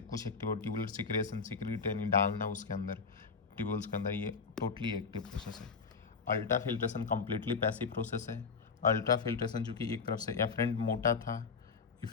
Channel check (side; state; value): right; quieter; 5.2 dB